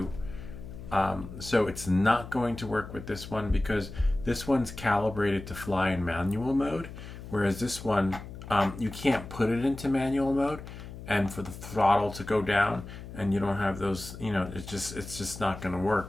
So it's not going to work with this one because this one's calibrated to fly in manual mode, whereas this one you can't put it into manual mode and for the throttle to go down, and you don't have those, you know, it's just not going to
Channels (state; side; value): noise; left; hum, 12 dB below the sound